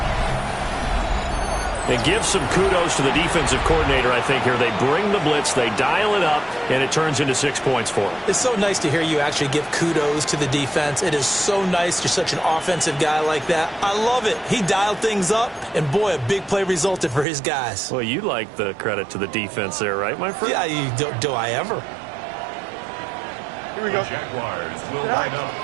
And give some kudos to the defensive coordinator, I think, here. They bring the blitz, they dial it up, and it turns into 6 points for them. It's so nice to hear you actually give kudos to the defense. It is so nice. You're such an offensive guy like that. I love it. He dialed things up, and boy, a big play resulted for his guys. Well, you like the credit to the defense there, right, my friend? Yeah, do I ever? Here we go. The Jaguars will line up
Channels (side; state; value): left; drops out; at 17.2 s